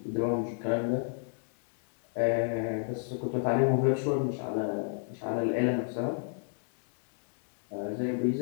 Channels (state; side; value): silent; right; digital silence